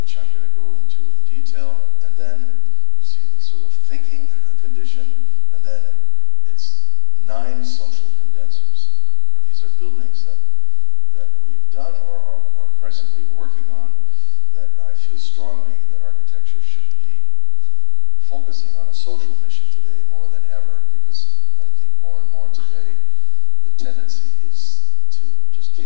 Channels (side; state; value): both; different; correlation 0.00